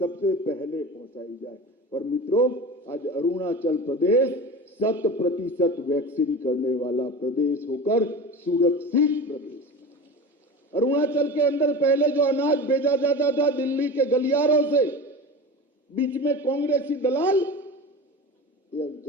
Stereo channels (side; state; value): both; normal; correlation 0.31